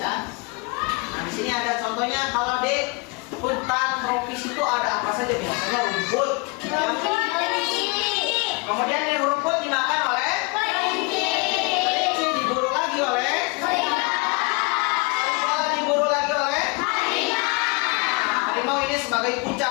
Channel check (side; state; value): right; quieter; 28.7 dB